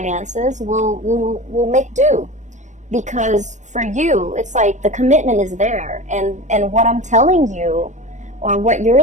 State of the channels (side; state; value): left; late; 0.35 ms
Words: We'll make do, because for you, it's like the commitment is there, and what I'm telling you, or what